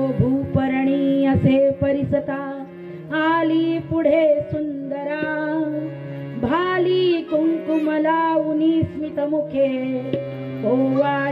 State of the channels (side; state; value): both; identical; correlation 1.00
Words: भूपरणी असे परिसता, आली पुढे सुंदरा, भाली कुंकुम लावूनी स्मित मुखे,